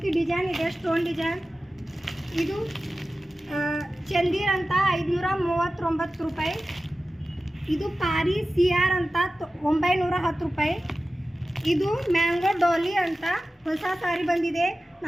ಡಿಸೈನ್ ಇದೆ, ಸ್ಟೋನ್ ಡಿಸೈನ್. ಇದು ಚಂದಿರ್ ಅಂತ 539 ರೂಪಾಯಿ. ಇದು ಪಾರಿ CR ಅಂತ 910 ರೂಪಾಯಿ. ಇದು ಮ್ಯಾಂಗೋ ಡಾಲಿ ಅಂತ ಹೊಸ ಸಾರಿ ಬಂದಿದೆ,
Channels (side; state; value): both; normal; correlation 0.95